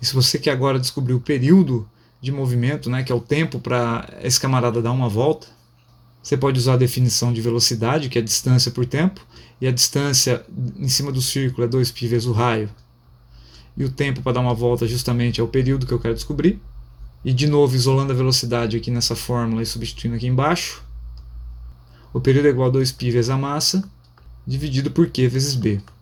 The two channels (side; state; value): both; identical; correlation 1.00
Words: E se você quer agora descobrir o período de movimento, né, que é o tempo para esse camarada dar uma volta, você pode usar a definição de velocidade, que é a distância por tempo, e a distância em cima do círculo é 2π vezes o raio. E o tempo para dar uma volta justamente é o período que eu quero descobrir. E de novo, isolando a velocidade aqui nessa fórmula e substituindo aqui embaixo, o período é igual a 2π vezes a massa, dividido por Q vezes B.